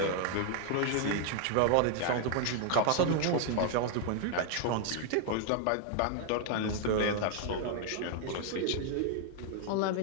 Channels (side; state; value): both; different; correlation 0.00